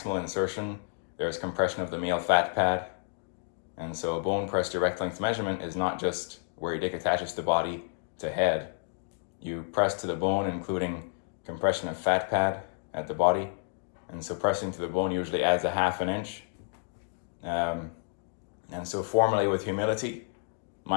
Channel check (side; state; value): right; silent; 56 dB below the other